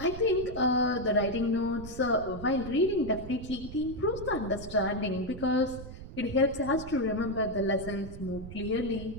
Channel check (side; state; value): right; noise; rumble, 12 dB below the sound